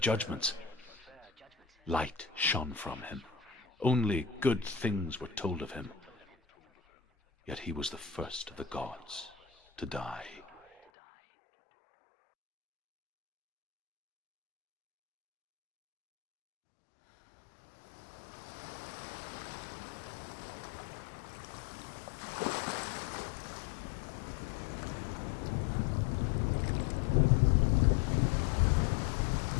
Light shone from him. Only good things were told of him. Yet he was the first of the gods to die.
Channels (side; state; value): right; drops out; at 10.9 s